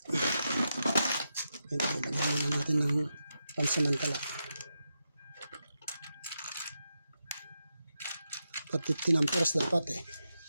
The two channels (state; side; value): inverted; both; correlation -0.87